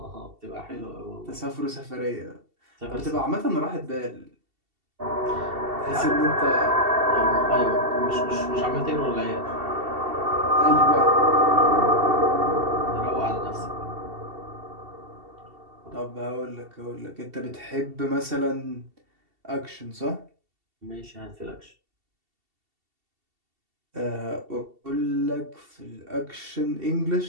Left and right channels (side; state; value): left; late; 2.7 ms